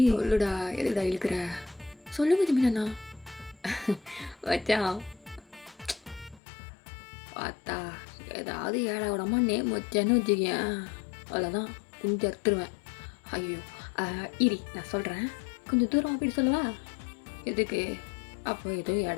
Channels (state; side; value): drops out; right; at 6.4 s